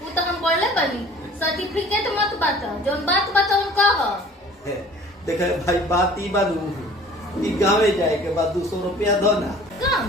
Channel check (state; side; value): normal; both; correlation 0.48